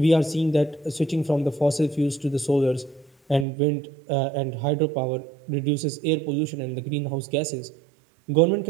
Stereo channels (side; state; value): left; drops out; at 3.5 s